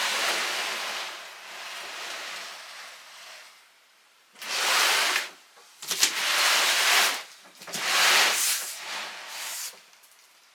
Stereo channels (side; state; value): both; identical; correlation 1.00